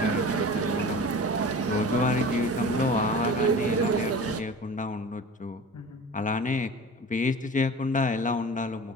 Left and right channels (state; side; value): normal; both; correlation 0.37